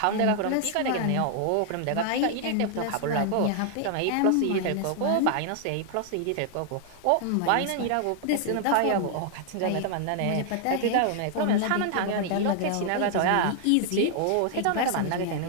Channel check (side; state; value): both; different; correlation 0.00